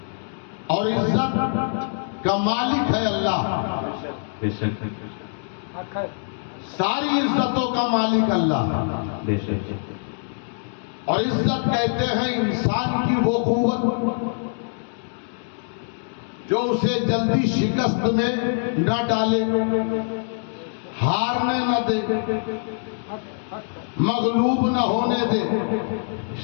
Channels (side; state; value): right; silent; digital silence